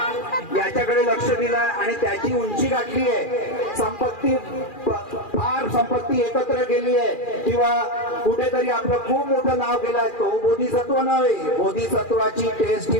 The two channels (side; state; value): right; late; 2.4 ms